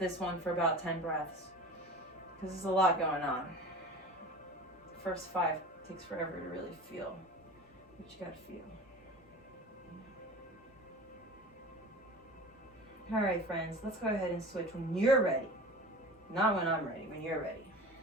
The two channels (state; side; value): normal; both; correlation 0.36